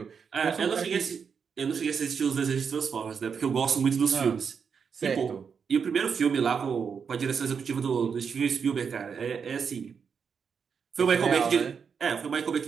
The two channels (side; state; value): left; quieter; 6.4 dB